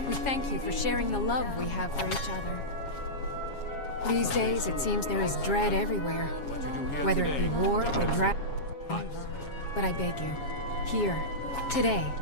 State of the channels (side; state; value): right; late; 7.3 ms